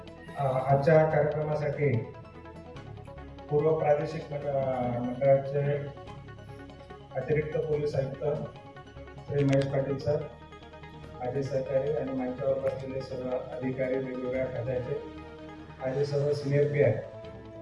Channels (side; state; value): both; identical; correlation 1.00